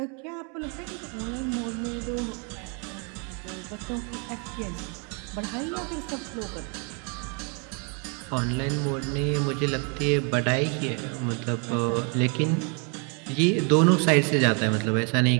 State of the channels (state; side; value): quieter; left; 36.5 dB